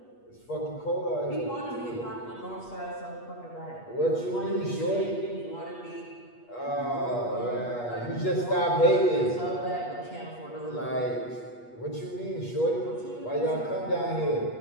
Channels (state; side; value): late; right; 8.3 ms